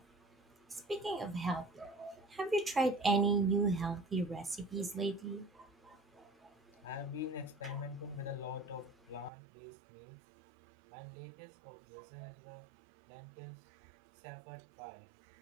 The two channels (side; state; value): left; drops out; at 9.3 s